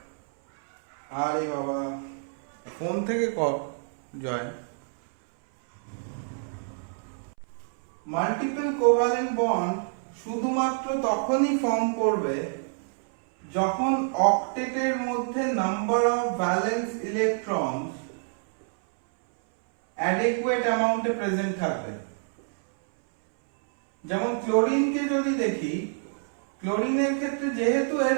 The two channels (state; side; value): silent; left; 60 dB below the other